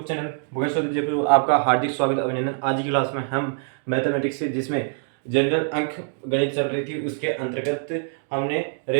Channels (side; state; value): left; silent; 63 dB below the other